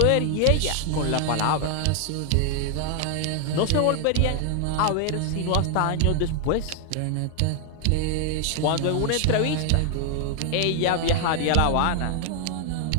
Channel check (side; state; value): both; different; correlation 0.00